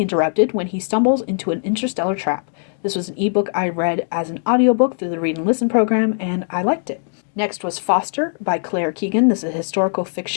interrupted when he stumbles into an interstellar trap. This was an ebook I read as an audiobook through the Read and Listen program, and I liked it. Next was Foster by Claire Keegan. This is a historical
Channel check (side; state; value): right; silent; digital silence